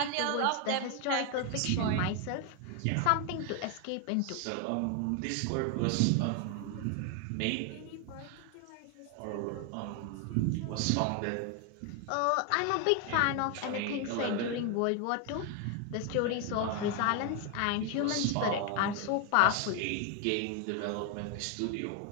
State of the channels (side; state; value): both; different; correlation 0.01